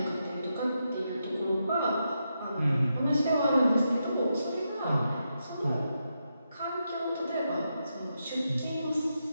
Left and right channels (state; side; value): inverted; both; correlation -0.85